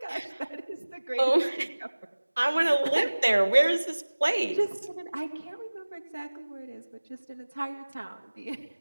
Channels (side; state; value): both; inverted; correlation -1.00